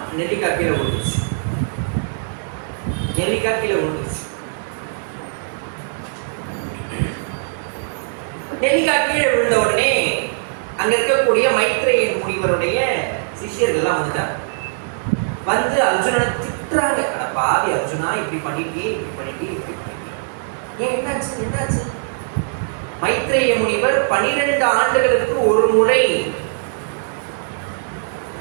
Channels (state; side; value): silent; left; digital silence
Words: நெல்லிக்காய் கீழே விழுந்துருச்சு. நெல்லிக்காய் கீழே விழுந்துருச்சு. நெல்லிக்காய் கீழே விழுந்த உடனே அங்க இருக்கக்கூடிய மைத்ரேயன் முனிவருடைய சிஷியர்கள்லாம் வந்துட்டாங்க. வந்து அர்ஜுனனை திட்டுறாங்க, அட பாவி அர்ஜுனா, இப்படி பண்ணிட்டே இப்படி பண்ணிட்டே இப்படி பண்ணிட்டே, ஏன் என்னாச்சு என்னாச்சு? மைத்ரேய முனிவர் 12 ஆண்டுகளுக்கு ஒரு முறை,